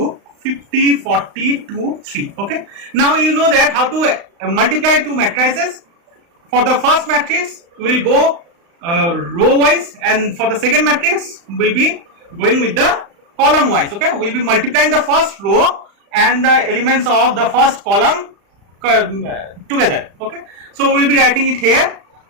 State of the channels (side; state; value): left; late; 35 ms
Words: 50, 40, 2, 3. Okay. Now you know that how to multiply two matrices. For the first matrix, we will go row wise, and for the second matrix, we will be going with the column wise. Okay. We will be multiplying the first row and the elements of the first column together. Okay. So we will be writing it here,